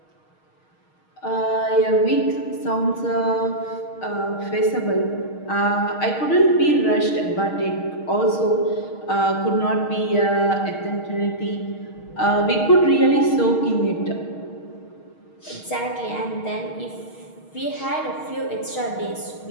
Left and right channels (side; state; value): right; late; 6.4 ms